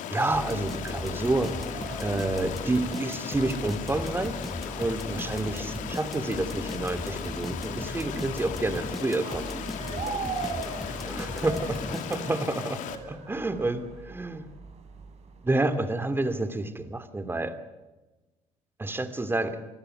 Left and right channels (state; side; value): normal; both; correlation 0.75